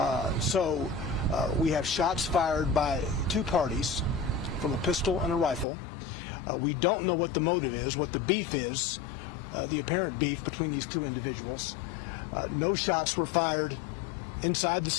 So we have shots fired by two parties from a pistol and a rifle. We don't know what the motive is, what the beef is, the apparent beef between these two individuals. No shots were fired inside the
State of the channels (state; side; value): drops out; right; at 5.7 s